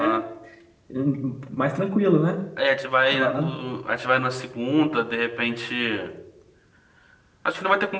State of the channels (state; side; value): identical; both; correlation 1.00